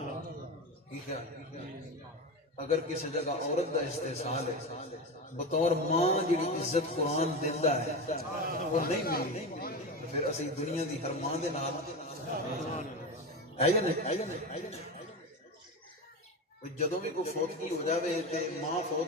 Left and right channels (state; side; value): normal; both; correlation 0.22